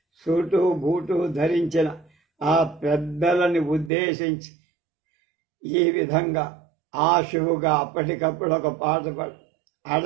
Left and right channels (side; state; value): left; drops out; at 3.9 s